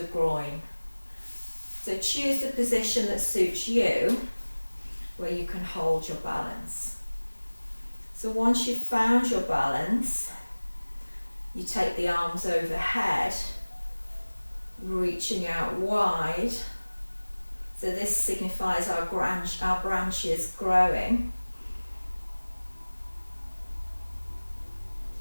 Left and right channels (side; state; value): both; inverted; correlation -1.00